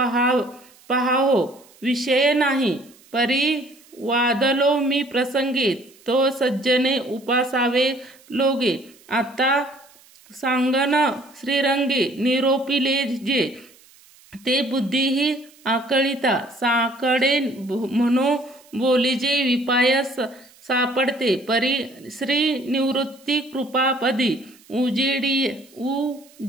विषय नाही परी वादलो मी प्रसंगे तो सज्जने उपासावे लोगे आता सांगन श्रीरंगे निरोपिले जे ते बुद्धीही आकळिता साकडे म्हणो बोलीजे विपाय सापडते परी श्री निवृत्ती कृपापदी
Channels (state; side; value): noise; right; hiss, 27 dB below the sound